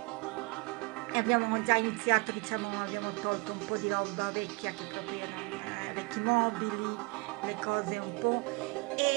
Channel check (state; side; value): quieter; left; 28.6 dB